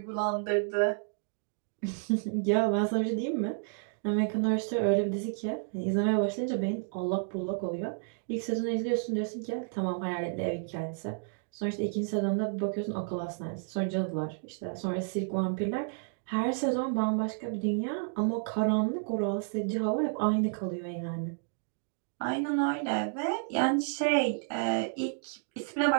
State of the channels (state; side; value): silent; left; digital silence